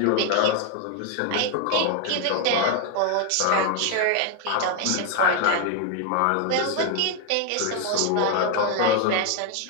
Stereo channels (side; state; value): both; different; correlation 0.01